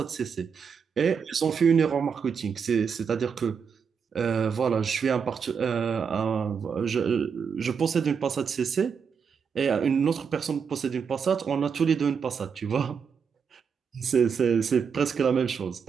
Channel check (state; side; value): quieter; left; 6.4 dB